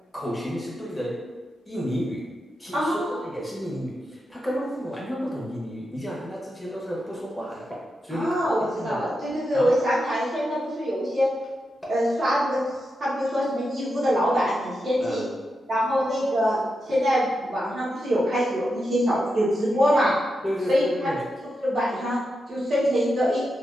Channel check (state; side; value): normal; both; correlation 0.87